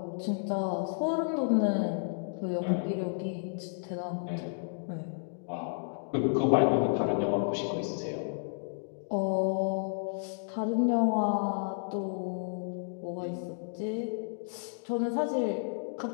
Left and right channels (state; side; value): silent; right; digital silence